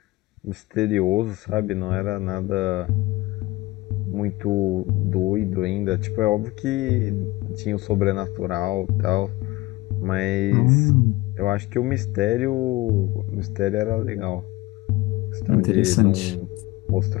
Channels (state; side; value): quieter; right; 20.0 dB